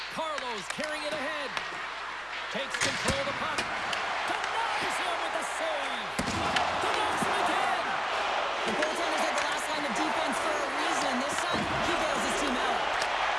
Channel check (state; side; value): noise; left; hum, 28 dB below the sound